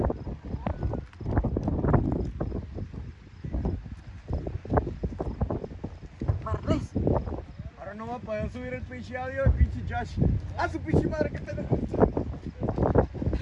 Ahora no va a poder subir el pinche audio, el pinche Josh. A su pinche madre que tenemos.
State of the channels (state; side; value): identical; both; correlation 1.00